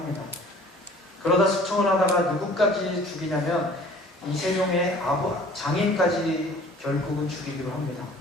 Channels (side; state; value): both; normal; correlation 0.50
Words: 그러다 숙청을 하다가 누구까지 죽이냐면 이 세종의 장인까지 결국은 죽이기로 합니다.